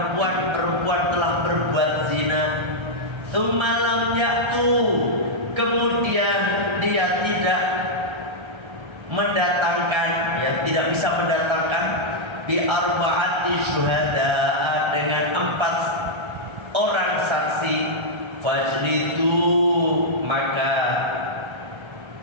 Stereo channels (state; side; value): late; left; 1.3 ms